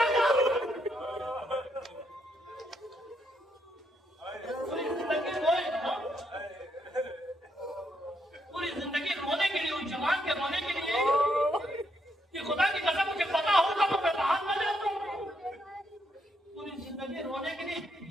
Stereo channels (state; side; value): normal; both; correlation 0.77